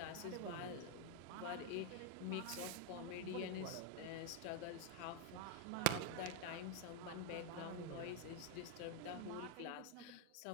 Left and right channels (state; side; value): different; both; correlation 0.01